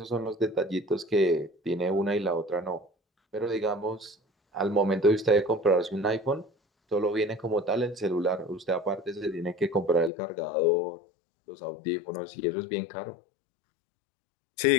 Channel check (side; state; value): right; drops out; at 10.1 s